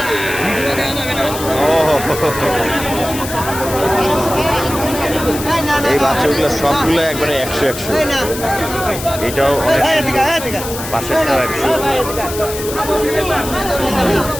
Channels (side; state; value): left; noise; hiss, 9 dB below the sound